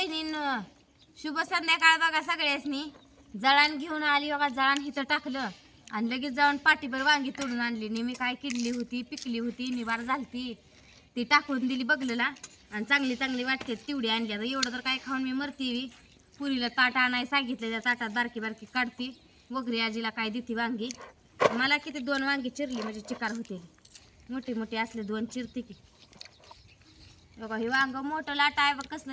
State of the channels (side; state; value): both; identical; correlation 1.00